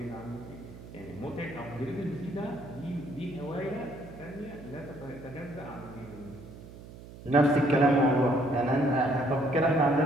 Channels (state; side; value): noise; right; hum, 16 dB below the sound